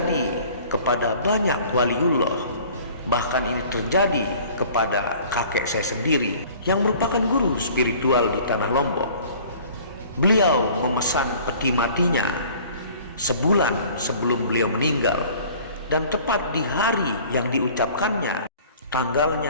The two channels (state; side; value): inverted; both; correlation -0.49